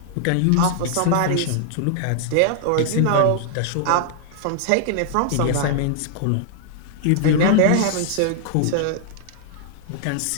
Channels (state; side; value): different; both; correlation -0.01